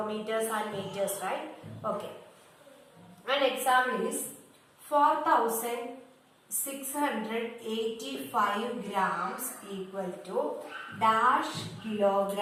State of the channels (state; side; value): identical; both; correlation 1.00